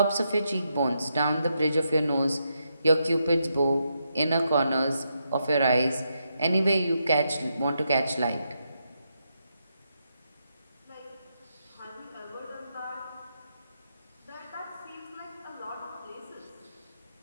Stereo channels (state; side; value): inverted; both; correlation -0.82